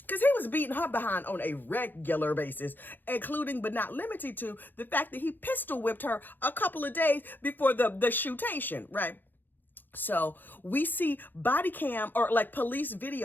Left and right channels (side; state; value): right; late; 0.090 ms